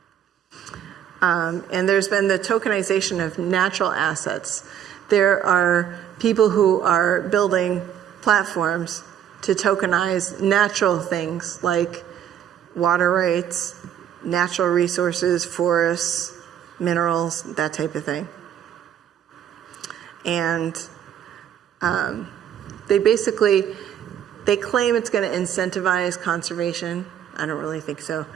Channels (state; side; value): quieter; left; 9.7 dB